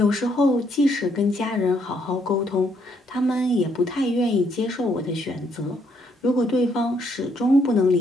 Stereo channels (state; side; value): normal; both; correlation 0.72